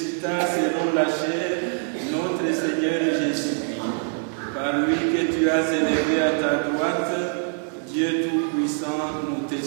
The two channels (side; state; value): left; silent; 61 dB below the other